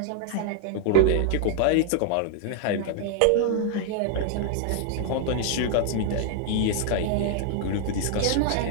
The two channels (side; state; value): both; different; correlation 0.00